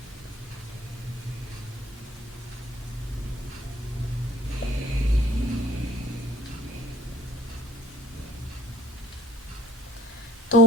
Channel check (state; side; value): normal; both; correlation 0.49